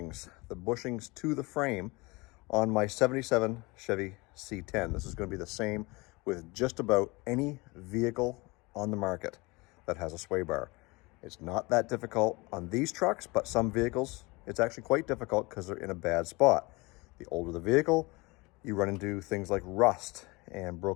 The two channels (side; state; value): right; quieter; 24.7 dB